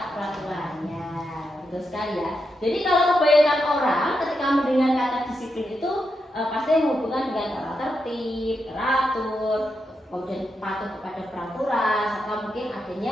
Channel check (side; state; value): both; normal; correlation 0.85